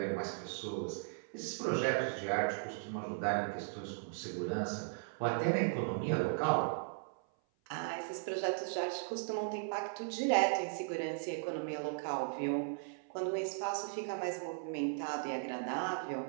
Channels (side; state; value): left; silent; 53 dB below the other